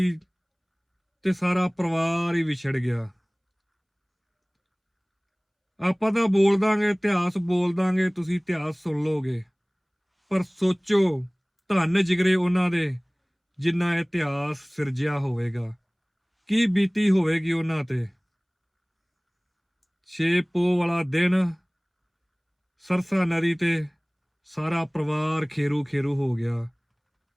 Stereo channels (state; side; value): identical; both; correlation 1.00